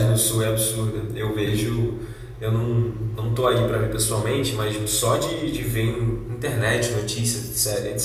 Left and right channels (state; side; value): identical; both; correlation 1.00